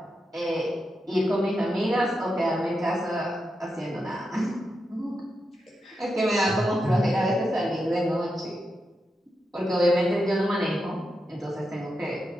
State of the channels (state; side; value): normal; both; correlation 0.87